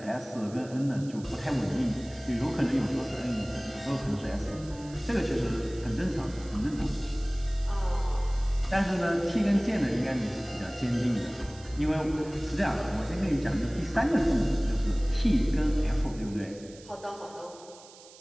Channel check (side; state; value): right; noise; hiss, 21 dB below the sound